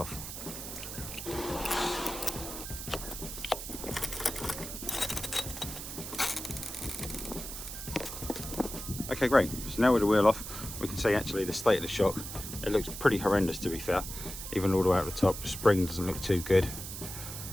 Okay, great. So now with the wheel off, we can see actually the state of the shock. It looks pretty horrendous, to be fair. Even all the way out the top, the spring doesn't look too good.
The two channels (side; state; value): right; noise; hiss, 8 dB below the sound